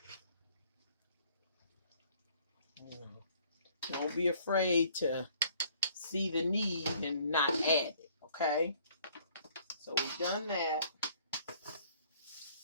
Don't be afraid to see the need and not add it, okay? So we've done that.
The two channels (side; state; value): both; inverted; correlation -0.59